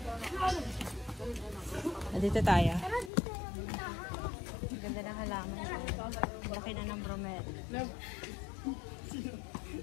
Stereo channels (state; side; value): drops out; right; at 3.1 s